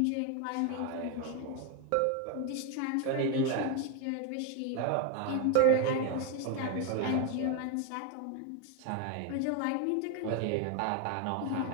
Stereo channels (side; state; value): both; different; correlation 0.01